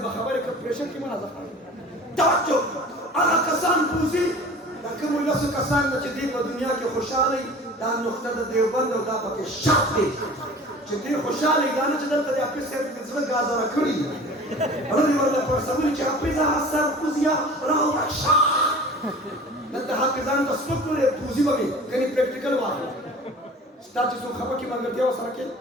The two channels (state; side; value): normal; both; correlation 0.42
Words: بخبر کا پریشر کی منازع توجہ آغا کسان پوزی لکم اللہ سے کسان نچدی و دنیا کی خوشحالی دا نقطہ دا دیوبند و دا پاکی شاک دی چدی خوشحالی دا نچدل تا دی اپیس سے بزرگ گازا رکھڑی رضی واللہ پر سمولی چا اپیزا حسر پوزیا راو رکشا دلتا حافظان دا سپک لے پوزی بمی کنی پریکٹیکل واقع تا چې څو خپه کې ملګرتیا وسره کې